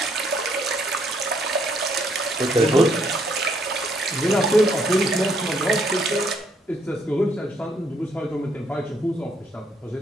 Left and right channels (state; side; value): normal; both; correlation 0.70